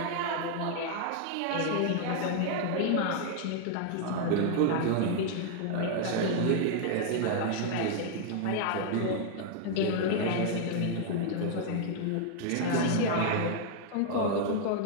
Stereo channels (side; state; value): both; different; correlation 0.00